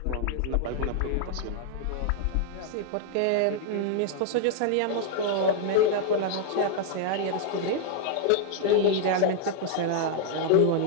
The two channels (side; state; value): both; different; correlation 0.00